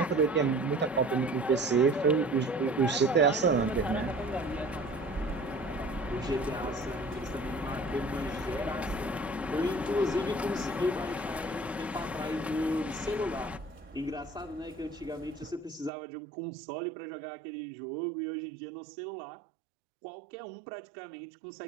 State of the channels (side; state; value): left; drops out; at 15.9 s